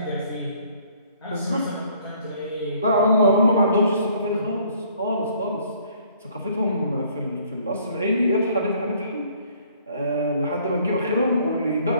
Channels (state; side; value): inverted; both; correlation -0.60